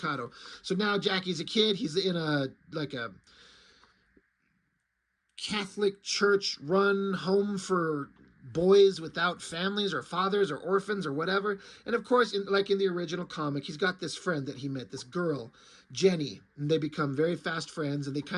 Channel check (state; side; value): identical; both; correlation 1.00